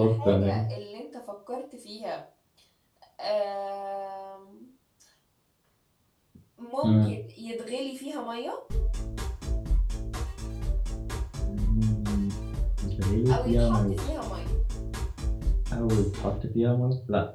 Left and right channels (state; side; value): identical; both; correlation 1.00